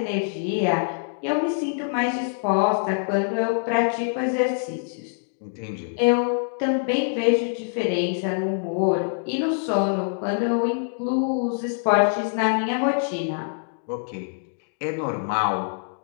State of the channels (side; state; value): right; silent; digital silence